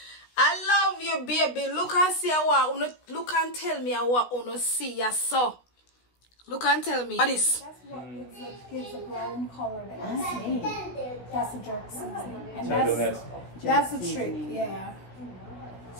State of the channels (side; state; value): right; late; 16 ms